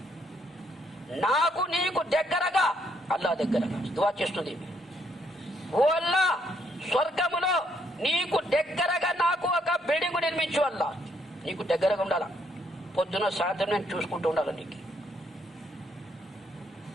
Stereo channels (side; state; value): both; normal; correlation 0.72